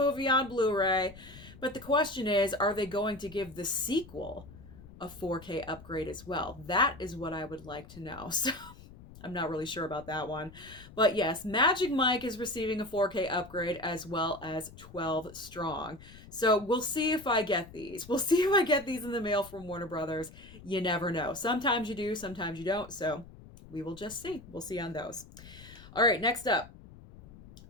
on Blu-ray. But the question is, are they going to give the sequel a 4K upgrade as well? That is what I would like to know. So I'm not really sure about that one. But yes, Magic Mike is receiving a 4K upgrade, as well as 12 Strong. So we'll see if I get these. We'll see if I get these in the mail from Warner Brothers. You never know. Sometimes you do, sometimes you don't. So we will just see. We'll see on those. All right, next up.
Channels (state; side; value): noise; left; rumble, 19 dB below the sound